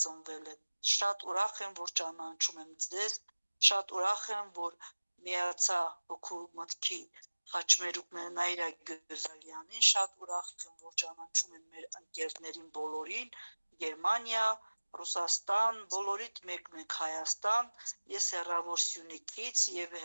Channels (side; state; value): both; inverted; correlation -1.00